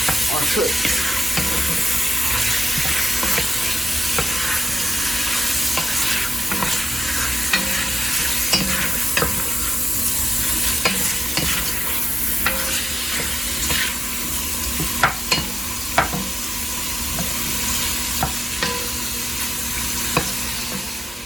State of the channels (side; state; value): both; normal; correlation 0.93